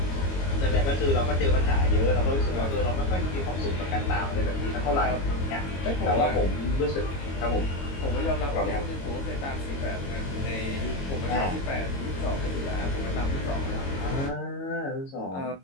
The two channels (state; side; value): late; right; 22 ms